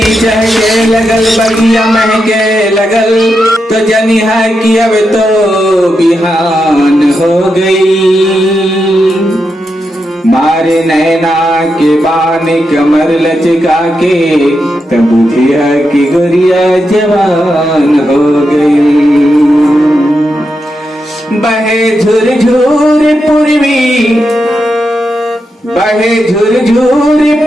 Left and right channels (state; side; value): normal; both; correlation 0.86